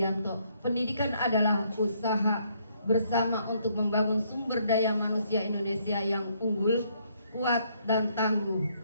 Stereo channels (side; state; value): both; inverted; correlation -0.69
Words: pendidikan adalah usaha bersama untuk membangun sumber daya manusia Indonesia yang unggul, kuat, dan tangguh